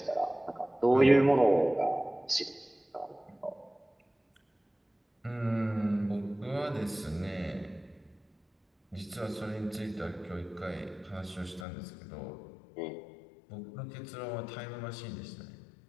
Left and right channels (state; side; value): drops out; right; at 11.7 s